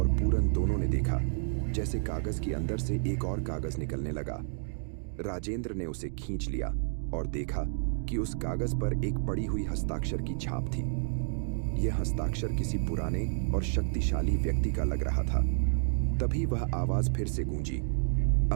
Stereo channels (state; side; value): silent; left; digital silence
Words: पूरन दोनों ने देखा जैसे कागज के अंदर से एक और कागज निकलने लगा। राजेंद्र ने उसे खींच लिया और देखा कि उस कागज पर एक पड़ी हुई हस्ताक्षर की छाप थी। यह हस्ताक्षर किसी पुराने और शक्तिशाली व्यक्ति का लग रहा था। तभी वह आवाज फिर से गूंजी,